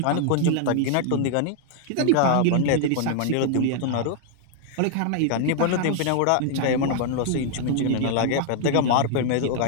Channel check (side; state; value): both; different; correlation 0.00